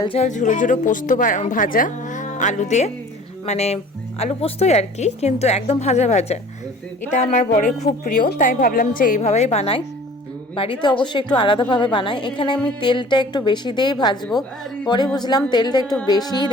ঝাল ঝুড়ো ঝুড়ো পোস্ত ভাজা আলু দিয়ে, মানে আলু পোস্তই আর কি, কিন্তু একদম ভাজা ভাজা। এটা আমার বরের খুব প্রিয়, তাই ভাবলাম যে এইভাবেই বানাই। বাড়িতে অবশ্যই একটু আলাদাভাবে বানাই। এখানে আমি তেলটা একটু বেশি দিয়েই ভাজবো। পরে বুঝলাম তেলটা একটু বেশিই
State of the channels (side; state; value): both; normal; correlation 0.47